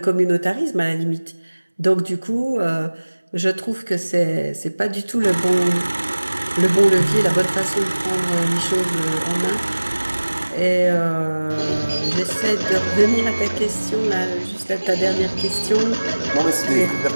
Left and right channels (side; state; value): both; inverted; correlation -1.00